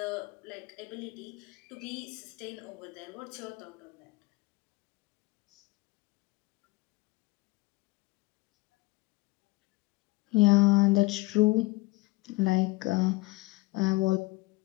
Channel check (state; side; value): quieter; right; 23.1 dB